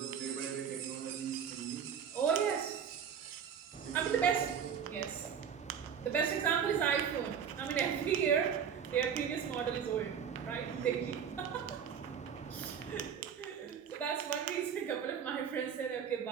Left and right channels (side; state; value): left; quieter; 7.7 dB